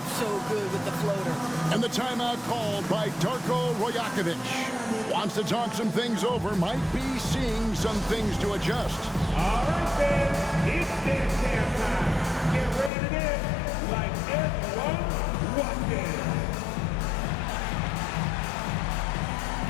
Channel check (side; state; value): right; drops out; at 12.9 s